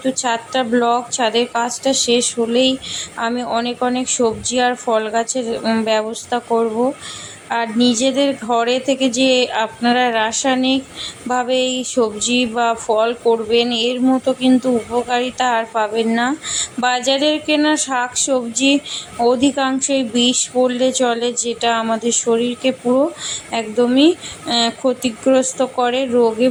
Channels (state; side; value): identical; both; correlation 1.00